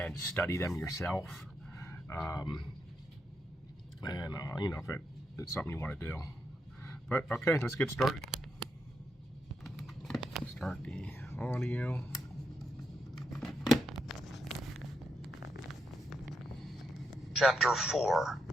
study them yourself. If it's something you want to do. But okay, let's get started. Start the audio. Chapter 4.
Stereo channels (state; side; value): normal; both; correlation 0.82